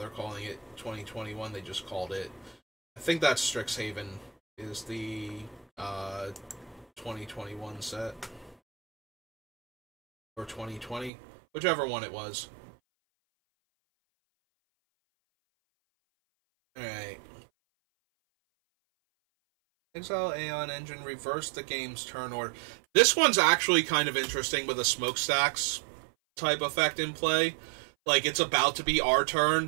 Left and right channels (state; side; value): drops out; left; at 11.1 s